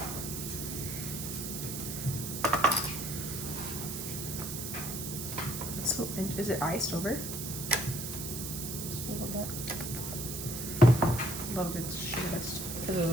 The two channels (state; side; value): noise; right; hiss, 5 dB below the sound